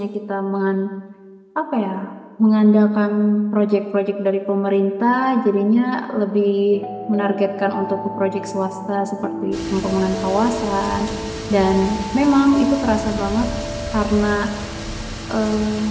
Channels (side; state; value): both; identical; correlation 1.00